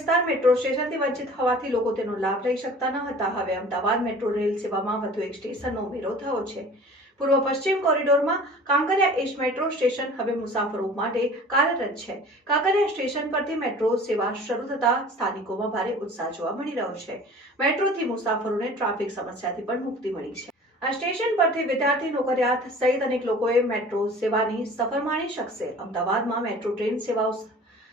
મેટ્રો સ્ટેશનથી વંચિત હોવાથી લોકો તેનો લાભ લઈ શકતા ન હતા. હવે અમદાવાદ મેટ્રો રેલ સેવામાં વધુ એક સ્ટેશનનો ઉમેરો થયો છે. પૂર્વ પશ્ચિમ કોરિડોરમાં કાંકરિયા એજ મેટ્રો સ્ટેશન હવે મુસાફરો માટે કાર્યરત છે. કાંકરિયા સ્ટેશન પરથી મેટ્રો સેવા શરૂ થતા સ્થાનિકોમાં ભારે ઉત્સાહ જોવા મળી રહ્યો છે. મેટ્રોથી મુસાફરોને ટ્રાફિક સમસ્યાથી પણ મુક્તિ મળી છે. આ સ્ટેશન પરથી વિદ્યાર્થી, નોકરિયાત સહિત અનેક લોકોએ મેટ્રો સેવાની સફર માણી શકશે. અમદાવાદમાં મેટ્રો ટ્રેન સેવાઓ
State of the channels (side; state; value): both; normal; correlation 0.44